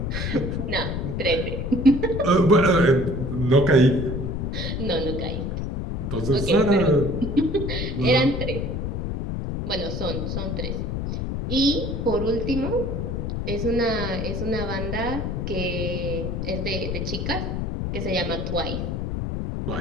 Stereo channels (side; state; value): left; noise; rumble, 2 dB below the sound